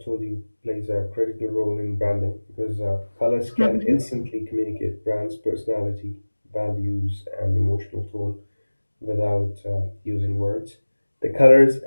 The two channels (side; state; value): both; inverted; correlation -1.00